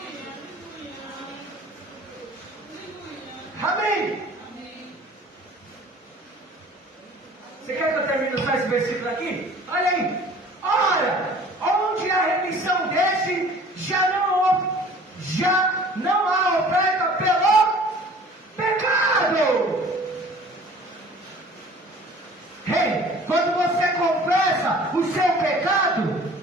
Amém? Você quer que eu termine só esse versículo aqui? Olha aí. Ora, onde a remissão desse já não há oferta pelo pecado. Ei, quando você confessa o seu pecado,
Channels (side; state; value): both; normal; correlation 0.48